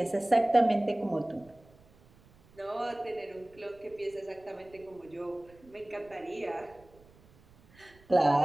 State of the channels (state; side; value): noise; right; rumble, 27 dB below the sound